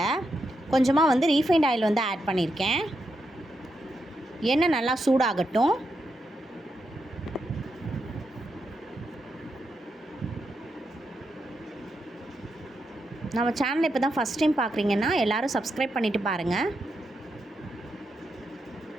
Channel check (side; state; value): both; normal; correlation 0.84